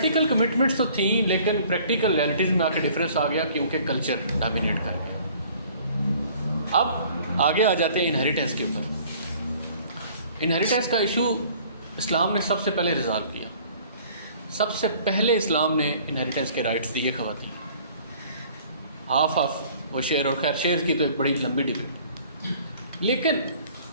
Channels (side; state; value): both; inverted; correlation -0.53